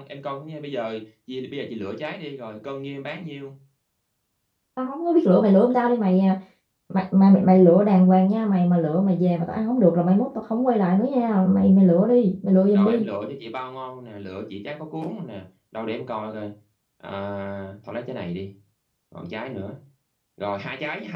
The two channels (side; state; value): both; identical; correlation 1.00